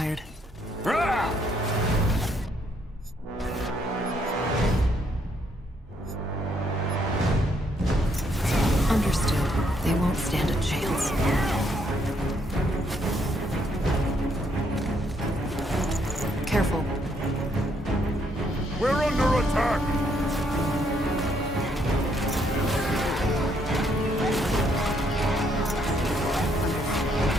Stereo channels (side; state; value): both; normal; correlation 0.72